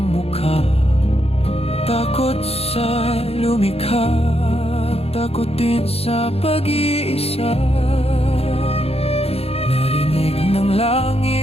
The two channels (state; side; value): late; right; 0.29 ms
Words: mukha. Takot sa lumikha, takot din sa pag-iisa. Narinig ng